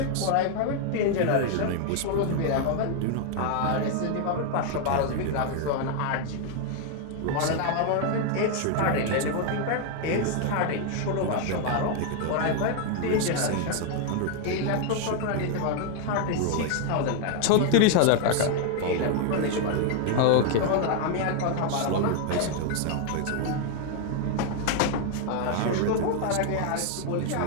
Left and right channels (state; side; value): different; both; correlation 0.00